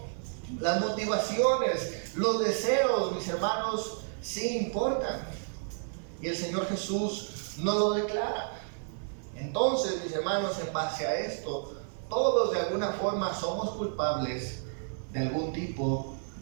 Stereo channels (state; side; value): silent; left; 57 dB below the other